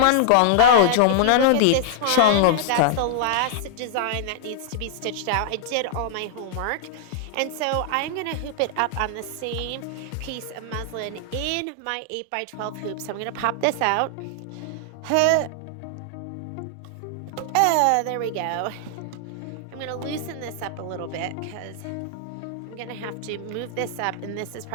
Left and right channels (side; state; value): both; different; correlation -0.01